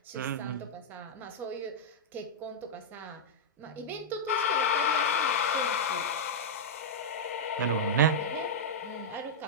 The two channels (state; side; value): normal; both; correlation -0.07